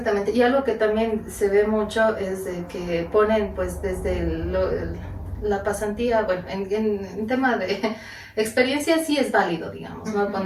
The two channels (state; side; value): identical; both; correlation 1.00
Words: y algo que también se ve mucho es de que ponen pues desde la pasantía, bueno, en tema de experiencia sí es válido, digamos, ¿no?